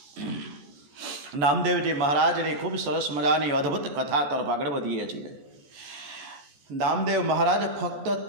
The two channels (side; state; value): left; late; 14 ms